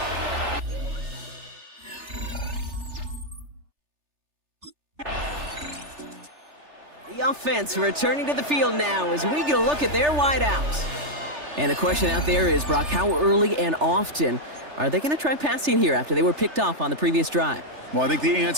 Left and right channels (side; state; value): left; late; 3.3 ms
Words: The offense returning to the field now as we get a look at their wideouts. And the question out there is, Brock, how early and often are they going to try passing here after they were picked off on the previous drive? Well, I think the